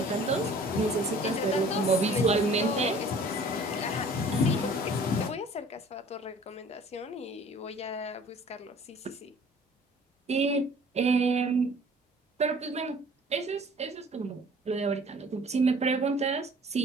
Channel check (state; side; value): normal; both; correlation 0.51